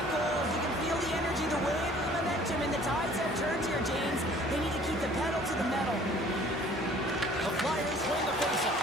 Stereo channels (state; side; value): normal; both; correlation 0.53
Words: goals. You can feel the energy, the wave, the momentum, and the tides have turned here, James. They need to keep the pedal to the metal. The Flyers win the